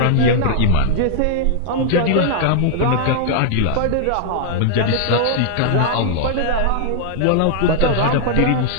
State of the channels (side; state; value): both; different; correlation 0.00